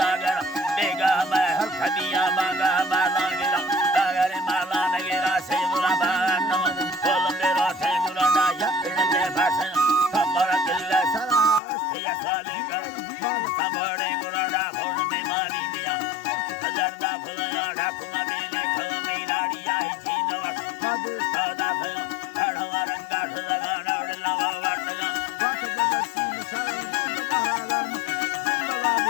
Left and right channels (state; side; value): drops out; right; at 11.6 s